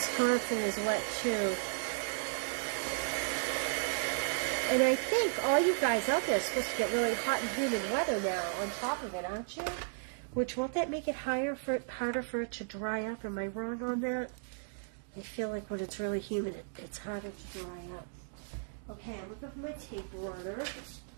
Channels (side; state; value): left; silent; digital silence